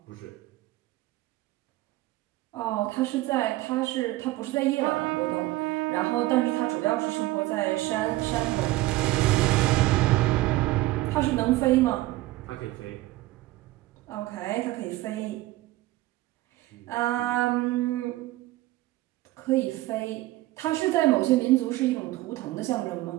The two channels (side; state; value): left; quieter; 17.7 dB